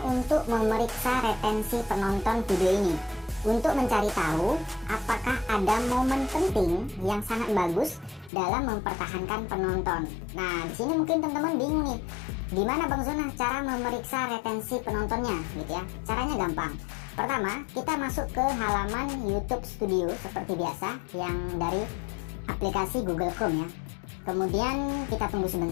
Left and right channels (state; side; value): drops out; right; at 8.3 s